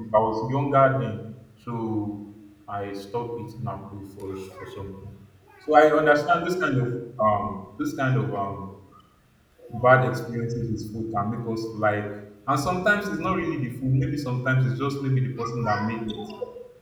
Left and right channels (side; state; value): both; identical; correlation 1.00